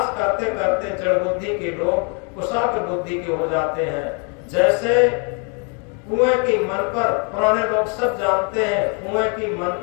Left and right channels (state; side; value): quieter; right; 36.6 dB